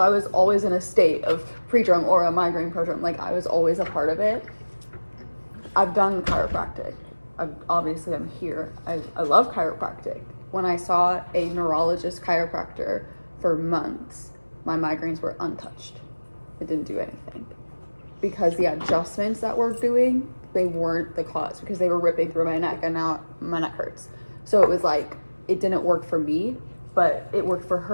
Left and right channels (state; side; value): inverted; both; correlation -1.00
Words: was always in a state of pre-drum or a migraine prodrome. Like I was always a part of it. I've done chiropractic. Obviously I'm here. I love chiropractic. When I saw a neurologist chiropractor for months, my migraines were untouched. It didn't do anything. Because the adjustments that we're doing, they weren't the cause, because they were ripping through my neck and now my neck hurts. So it was like, it didn't work for me, but it worked for